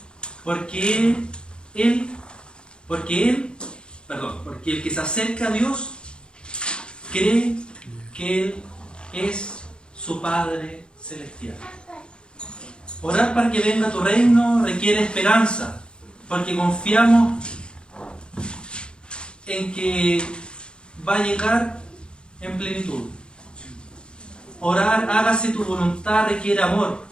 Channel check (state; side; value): late; right; 0.052 ms